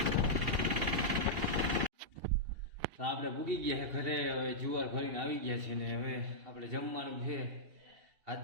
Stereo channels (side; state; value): left; late; 2.8 ms